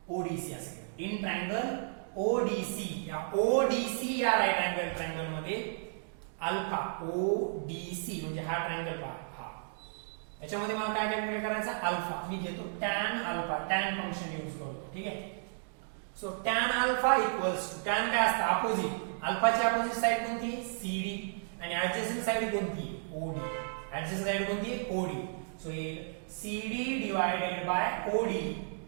ODC असेल, इन ट्रायंगल ODC या राईट अँगल ट्रायंगल मध्ये अल्फा ODC म्हणजे हा ट्रायंगल पहा, हा याच्यामध्ये मला काय कॅल्क्युलेट करायचा, अल्फा. मी घेतो tan alpha, tan function use करतो. ठीक आहे, so tan alpha equals to, tan काय असतं, अपोजिट. अल्फाची अपोजिट साइड कोणती, CD, आणि ऍडजेसंट साइड कोणती, OD. ऍडजेसंट साइड कोणती, OD. So CD divided by OD,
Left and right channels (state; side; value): silent; left; digital silence